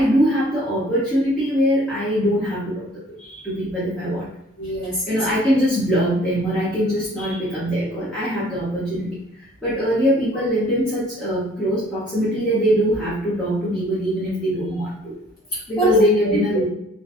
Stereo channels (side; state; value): both; normal; correlation 0.55